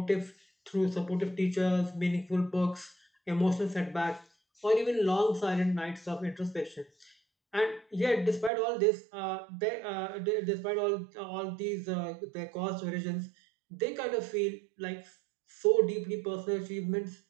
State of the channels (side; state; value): left; drops out; at 8.5 s